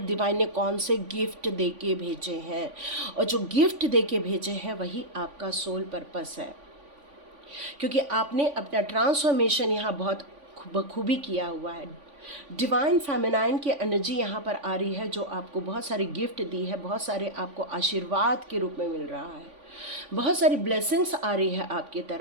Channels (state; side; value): late; left; 3.5 ms